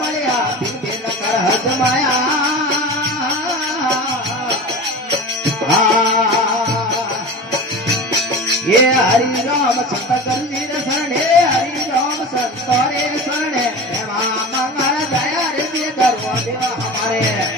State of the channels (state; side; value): normal; both; correlation 0.33